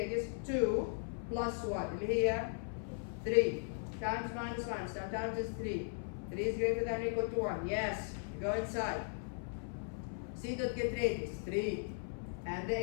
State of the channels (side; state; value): right; silent; 53 dB below the other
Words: 2 plus 1. Here 3 times minus minus. Now times is 3. 3 is greater than or equal to 1. Yes. Go inside. C dot get radius 3 and the